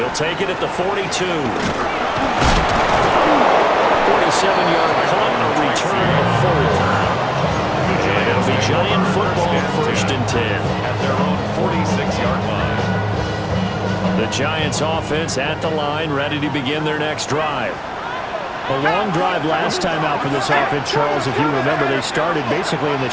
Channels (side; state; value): both; identical; correlation 1.00